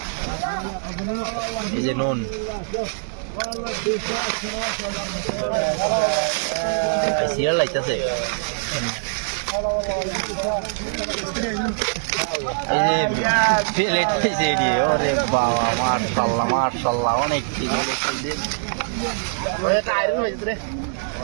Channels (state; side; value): silent; left; digital silence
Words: এই যে নুন সিরিয়াল লাইতেছে, এই যে প্লেট হয়েছে এটি। ওরে বাবা মাশাআল্লাহ মাশাআল্লাহ, অনেক ঠিক হয়েছে। আয়রন হয়েছে রে